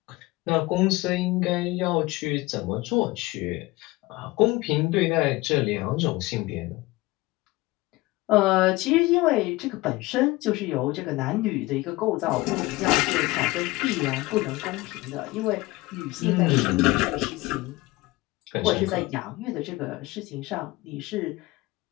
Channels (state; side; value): quieter; right; 20.7 dB